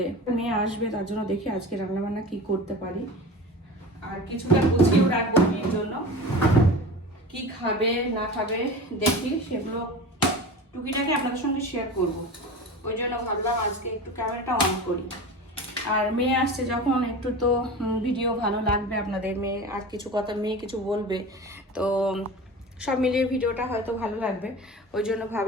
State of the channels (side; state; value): both; normal; correlation 0.32